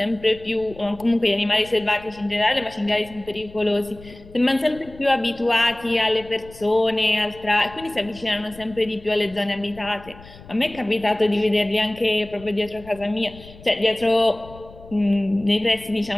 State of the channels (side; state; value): left; noise; rumble, 20 dB below the sound